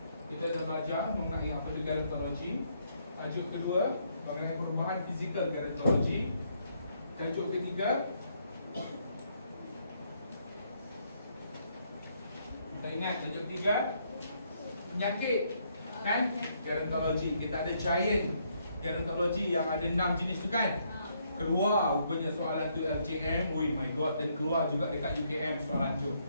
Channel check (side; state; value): both; inverted; correlation -0.72